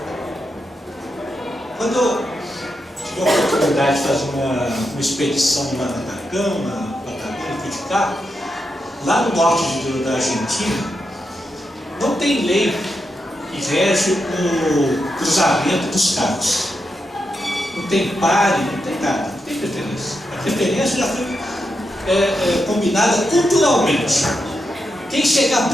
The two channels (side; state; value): both; normal; correlation 0.85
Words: Quando eu tive a oportunidade de fazer uma expedição lá na Atacama, fui de carro, lá no norte da Argentina, não tem lei que rege o cruzamento dos carros. Não tem pare, não tem nada, não tem preferência. A preferência já foi combinada culturalmente. Quem chegar